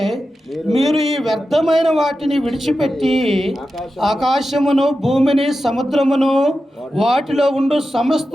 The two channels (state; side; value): normal; both; correlation 0.92